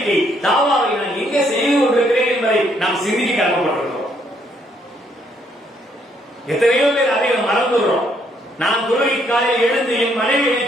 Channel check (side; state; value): both; normal; correlation 0.70